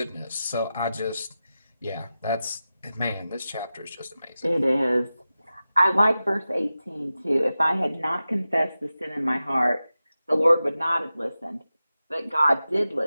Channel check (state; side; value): inverted; both; correlation -0.93